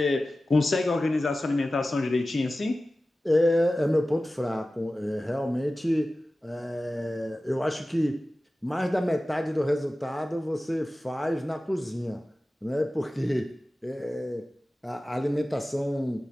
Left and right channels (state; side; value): normal; both; correlation 0.96